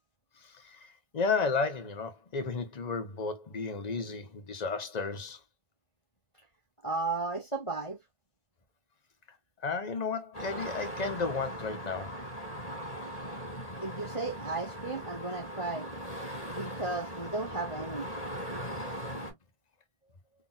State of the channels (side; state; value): right; late; 1.9 ms